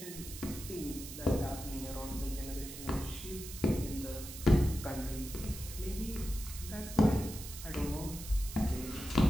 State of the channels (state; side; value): noise; right; hiss, 11 dB below the sound